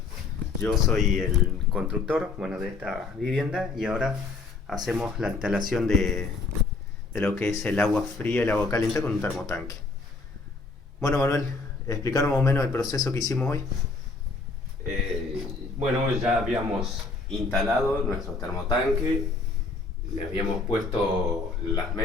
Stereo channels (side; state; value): right; quieter; 3.8 dB